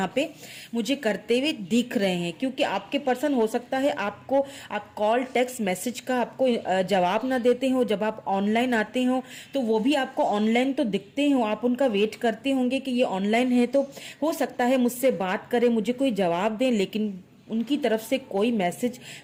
पे मुझे करते हुए दिख रहे हैं। क्योंकि आपके पर्सन हो सकता है आप कॉल टेक्स्ट मैसेज का आपको जवाब ना देते हो, जब आप ऑनलाइन आते हो तो वो भी आपको ऑनलाइन तो दिखते हो, आप उनका वेट करते होंगे कि ये ऑनलाइन है, तो हो सकता है मुझसे बात करें, मुझे कोई जवाब दें, लेकिन उनकी तरफ से कोई मैसेज,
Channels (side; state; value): both; identical; correlation 1.00